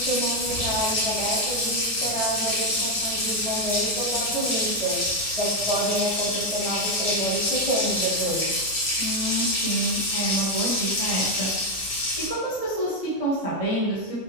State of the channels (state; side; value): normal; both; correlation 0.05